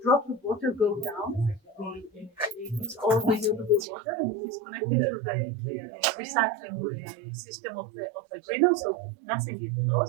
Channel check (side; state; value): left; drops out; at 3.9 s